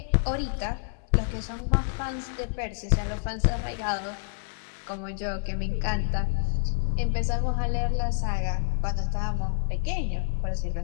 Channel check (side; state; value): right; silent; digital silence